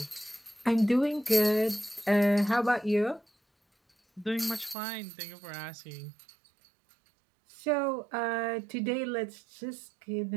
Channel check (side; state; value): left; drops out; at 4.8 s